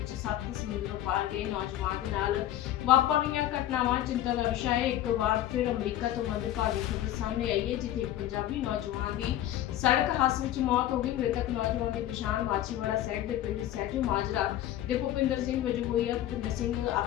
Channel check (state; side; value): quieter; right; 12.8 dB